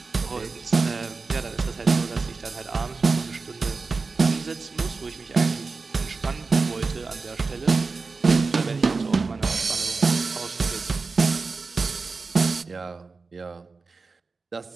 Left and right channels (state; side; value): quieter; left; 4.2 dB